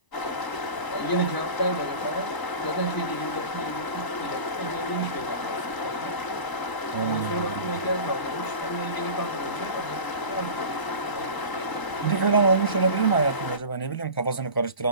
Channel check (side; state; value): right; late; 1.0 ms